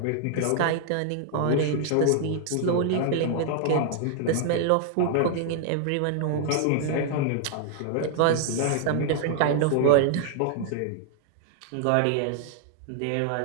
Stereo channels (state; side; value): different; both; correlation 0.00